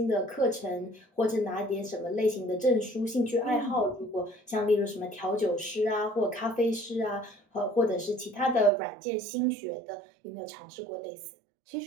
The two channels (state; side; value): drops out; left; at 8.7 s